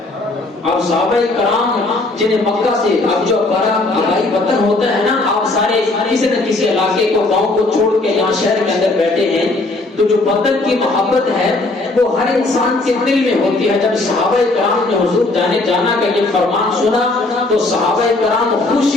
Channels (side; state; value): right; quieter; 3.0 dB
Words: اب صحابہ کرام جنہیں مکہ سے اب جو بڑا آبائی وطن ہوتا ہے نا، آپ سارے کسی نہ کسی علاقے کو، گاؤں کو چھوڑ کے یہاں شہر کے اندر بیٹھے ہیں، تو جو وطن کی محبت ہے وہ ہر انسان کے دل میں ہوتی ہے۔ جب صحابہ کرام نے حضور جانا کا یہ فرمان سنا تو صحابہ کرام